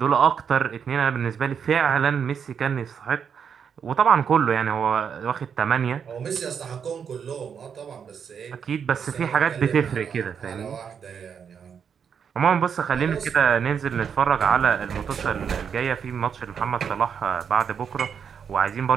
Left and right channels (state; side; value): quieter; left; 7.2 dB